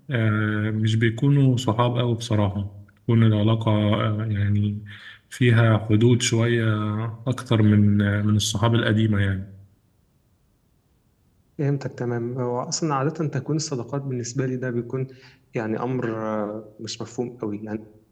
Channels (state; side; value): identical; both; correlation 1.00